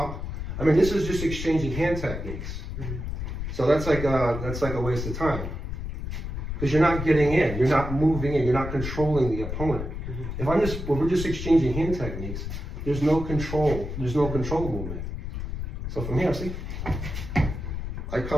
I mean, this is just exchanging hand techniques. So that's like a waste of time. Because you're not getting in, you're not moving in, you're not controlling the opponent. If we're just exchanging hand techniques, there's no control movement. So from here, see, I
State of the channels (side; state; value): left; noise; rumble, 5 dB below the sound